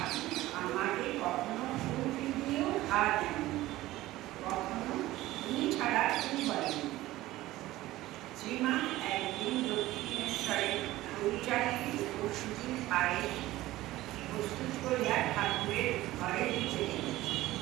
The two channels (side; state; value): left; quieter; 16.8 dB